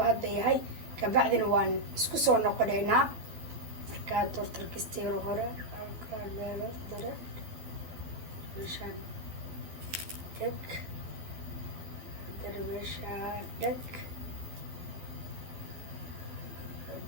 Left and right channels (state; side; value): late; left; 12 ms